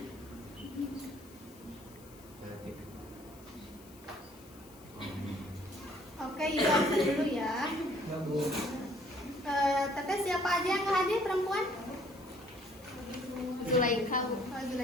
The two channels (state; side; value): noise; left; hiss, 23 dB below the sound